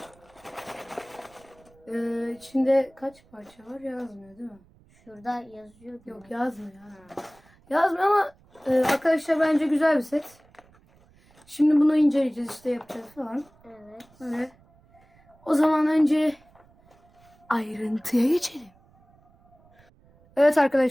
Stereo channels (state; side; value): noise; right; rumble, 30 dB below the sound